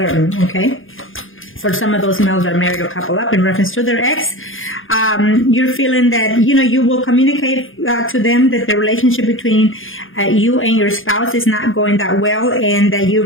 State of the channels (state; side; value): late; right; 0.59 ms